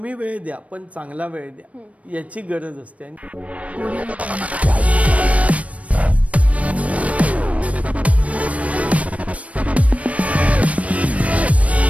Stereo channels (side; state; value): left; late; 0.065 ms